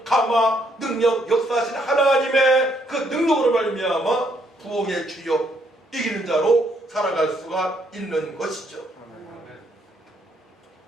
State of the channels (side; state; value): both; normal; correlation 0.71